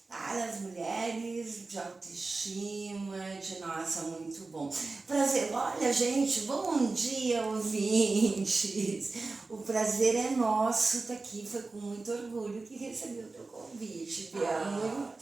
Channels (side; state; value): left; quieter; 3.7 dB